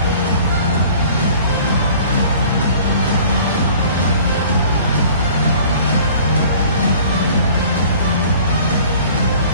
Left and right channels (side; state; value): both; inverted; correlation -0.48